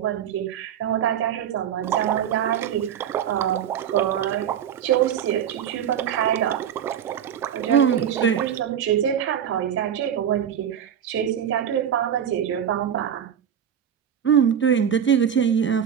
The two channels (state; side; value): quieter; left; 9.0 dB